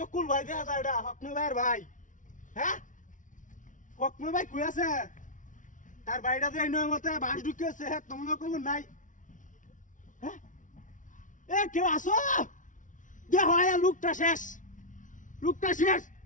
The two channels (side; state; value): right; late; 0.37 ms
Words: ভাই দেখা যায় এটা হকমে ভাইয়ের ভাই হ্যাঁ হকমে ভাই কই আছে তার বাড়িটা যে এই নয় মতে বাস ঢুকেছে হ্যাঁ তোমরা কোনো নাই হ্যাঁ এ কেউ আসো যে হয় লোকটা শেষ